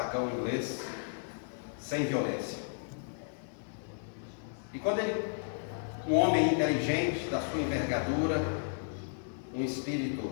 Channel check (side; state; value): right; silent; digital silence